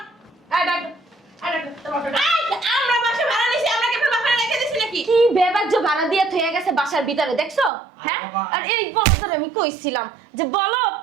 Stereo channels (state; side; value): drops out; left; at 7.7 s